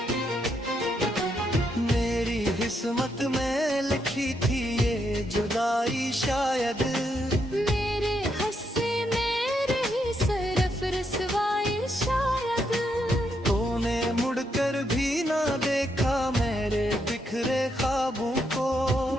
मेरी किस्मत में लिखी थी ये जुदाई शायद, मेरे हस्से में रही सिर्फ रसवाई शायद। तूने मुड़कर भी ना देखा मेरे बिखरे ख्वाबों को,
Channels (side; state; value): both; normal; correlation 0.78